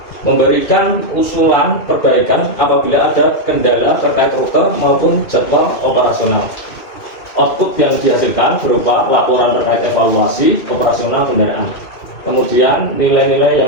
Memberikan usulan perbaikan apabila ada kendala terkait rute maupun jadwal operasional. Output yang dihasilkan berupa laporan terkait evaluasi operasional kendaraan. Kemudian nilai-nilai yang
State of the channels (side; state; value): right; late; 2.6 ms